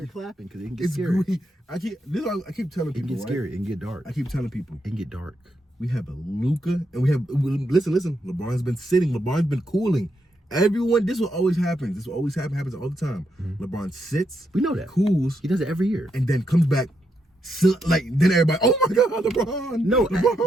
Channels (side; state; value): both; normal; correlation 0.81